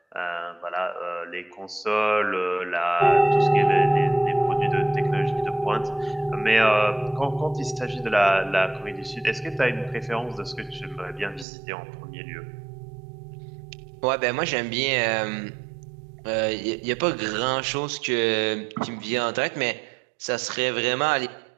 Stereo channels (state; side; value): drops out; left; at 11.5 s